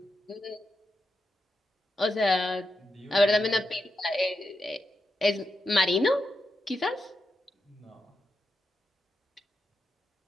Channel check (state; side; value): normal; both; correlation 0.86